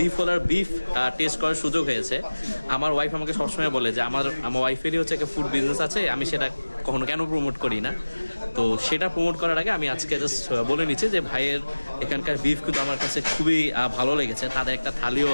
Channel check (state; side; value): inverted; both; correlation -1.00